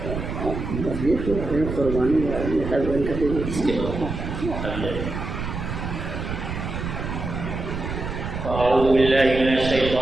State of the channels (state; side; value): noise; right; rumble, 5 dB below the sound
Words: فأعوذ بالله من